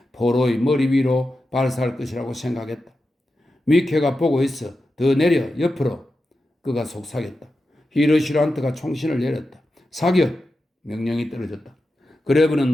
포로의 머리 위로 발사할 것이라고 생각했다. 미케가 보고 있어. 더 내려, 옆으로. 그가 속삭였다. 히르시란트가 총신을 내렸다. 사격! 명령이 떨어졌다. 그레브는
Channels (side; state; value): both; normal; correlation 0.91